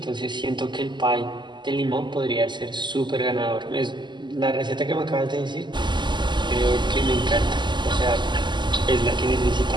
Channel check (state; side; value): late; left; 0.22 ms